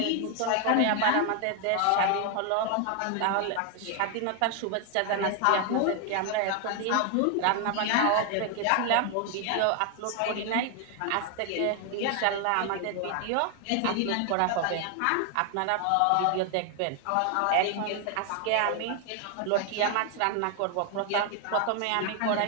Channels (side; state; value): both; different; correlation 0.00